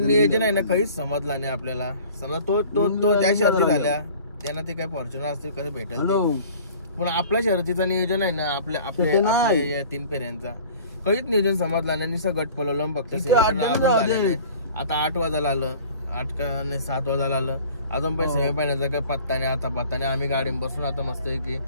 आहे ना काहीच समजला नाही आपल्याला. समजा तो त्या शर्ती झाल्या त्यांना ते काय फॉर्च्युनर असतील कसं भेटेल पण आपल्या शर्यतीचं नियोजन आहे ना आपल्या 3 फेऱ्यांचा काहीच नियोजन समजला नाही. निसं गट पलवलं फक्त. आता 8 वाजायला आलं, 7 वाजायला आलं अजून पण सेमी फायनलचा काही पत्ता नाही. आता पत्ता आम्ही गाडी बसून आता मस्त की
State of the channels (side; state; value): both; inverted; correlation -0.47